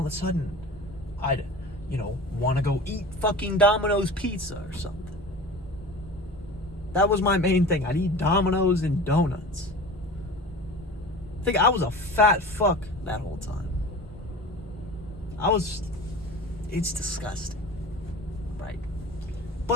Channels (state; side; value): normal; both; correlation 0.37